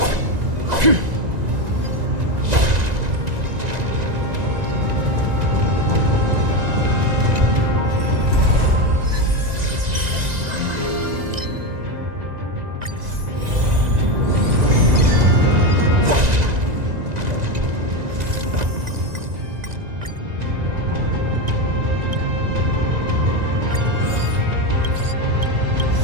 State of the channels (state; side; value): late; left; 1.9 ms